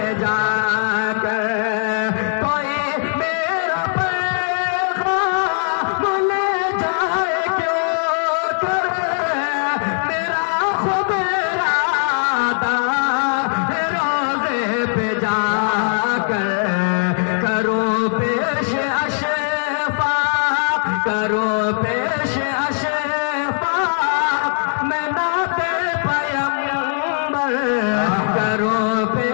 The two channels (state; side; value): silent; right; digital silence